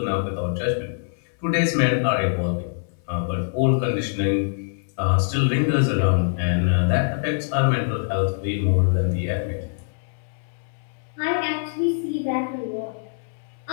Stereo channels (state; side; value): silent; right; 63 dB below the other